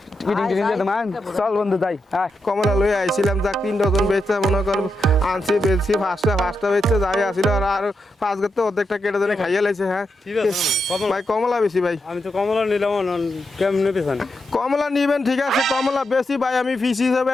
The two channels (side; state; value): both; normal; correlation 0.85